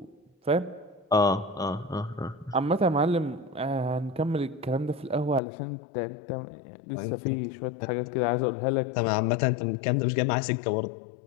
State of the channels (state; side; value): drops out; right; at 5.4 s